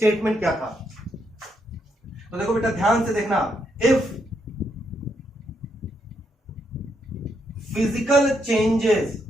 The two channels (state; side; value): normal; both; correlation 0.78